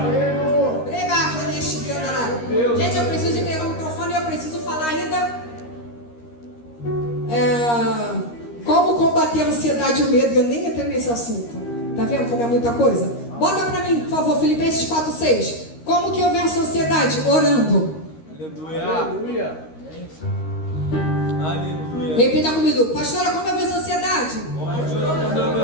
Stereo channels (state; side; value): late; right; 13 ms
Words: Gente, eu preciso entregar o microfone e eu preciso falar ainda como combater a ansiedade e o medo. Eu nem entrei nesse assunto. Tá vendo como é muita coisa? Bota pra mim, por favor, Filipenses 4:6. Como que eu venço a ansiedade? Orando. Aleluia. Aleluia. Repita comigo. Pastora, como eu venço a ansiedade?